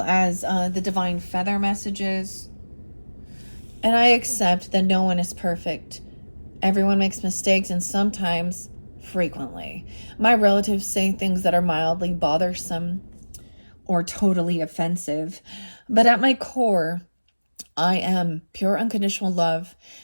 as the Divine Feather messages. And I accept that no one is perfect. Everyone makes mistakes, and sometimes, frequently. My relatives say things that are mildly bothersome or totally offensive. But at my core, I am pure unconditional love,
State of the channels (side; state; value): both; inverted; correlation -1.00